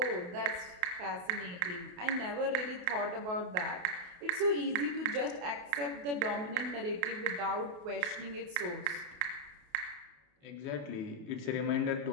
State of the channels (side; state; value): left; late; 28 ms